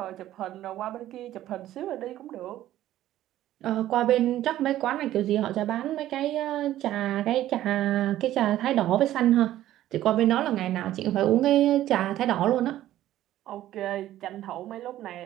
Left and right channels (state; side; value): quieter; left; 13.5 dB